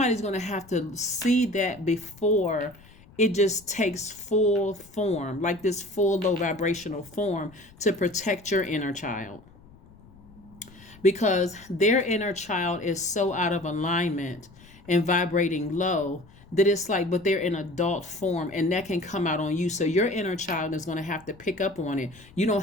going to have to see that before it just takes full form, like this full low vibrational form, to protect your inner child. Because their inner child is so out of alignment, and vibrating low, that it's like, but they're in adult form, and that can come out on you. So your inner child is going to have to pick up on it. You don't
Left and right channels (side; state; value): left; noise; rumble, 24 dB below the sound